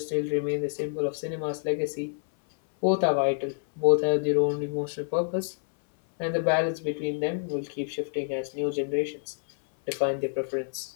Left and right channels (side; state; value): right; silent; 60 dB below the other